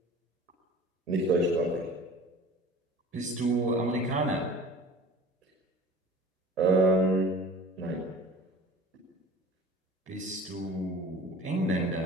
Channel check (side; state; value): both; normal; correlation 0.42